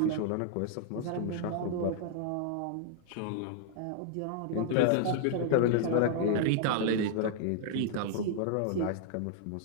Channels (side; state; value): both; different; correlation -0.01